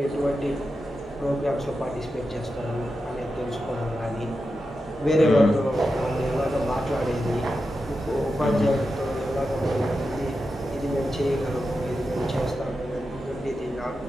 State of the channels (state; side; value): normal; both; correlation 0.89